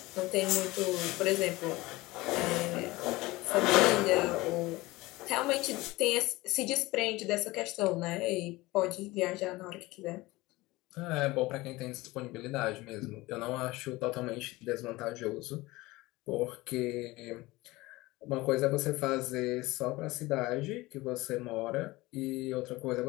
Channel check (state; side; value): quieter; right; 20.4 dB